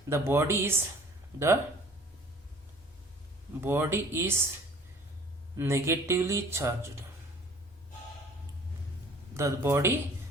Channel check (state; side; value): normal; both; correlation 0.50